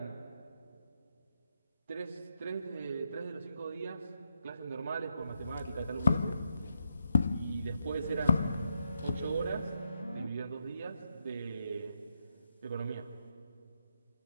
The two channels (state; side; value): inverted; both; correlation -0.81